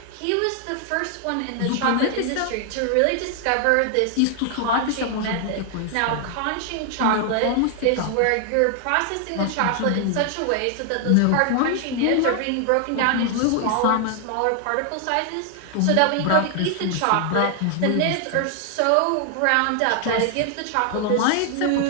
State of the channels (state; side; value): different; both; correlation 0.00